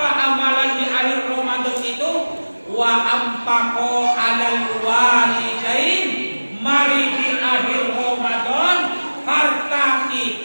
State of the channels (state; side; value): inverted; both; correlation -1.00